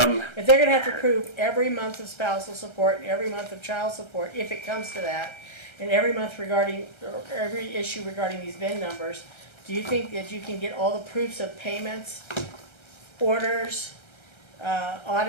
If they're gonna have to prove every month of spousal support and every month of child support, if it comes to that, and every month regarding, or every issue regarding these VIN numbers, do you think that you can get all the proofs of payments, orders,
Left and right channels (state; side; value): late; right; 1.3 ms